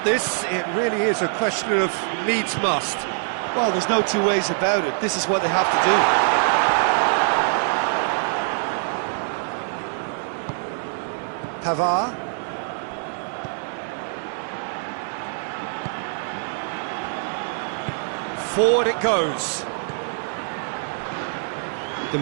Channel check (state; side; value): silent; left; 63 dB below the other